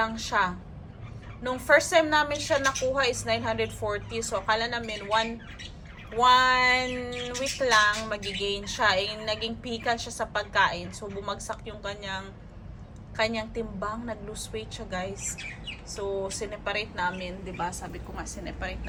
siya. Nung first time namin siya nakuha is 940. So, akala namin one week lang magigain siya. Eh, naging pikan siya sa pagkain. So, bumagsak yung kanyang timbang, nag-lose weight siya guys. So, sineparate namin, 'di ba? Sabi ko nga sineparate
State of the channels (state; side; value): identical; both; correlation 1.00